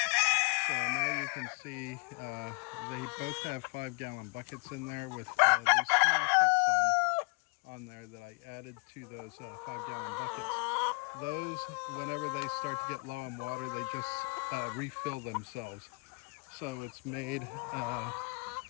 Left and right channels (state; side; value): quieter; right; 33.4 dB